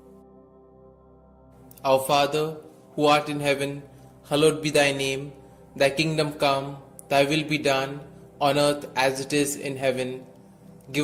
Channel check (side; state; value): both; identical; correlation 1.00